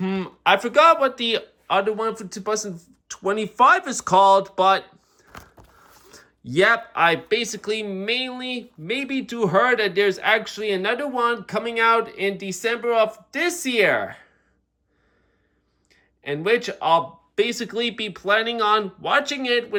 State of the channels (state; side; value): identical; both; correlation 1.00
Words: I forgot what the other one for 2025 is called, but yep, I basically maybe do heard that there's actually another one coming out in December of this year, in which I'll basically be planning on watching it